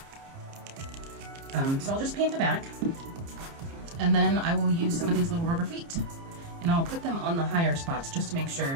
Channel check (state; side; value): late; left; 30 ms